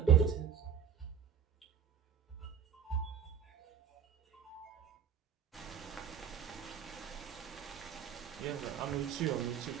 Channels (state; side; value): quieter; left; 8.0 dB